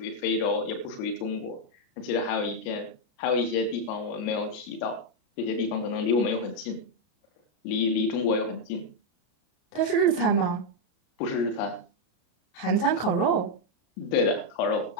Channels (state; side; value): late; right; 33 ms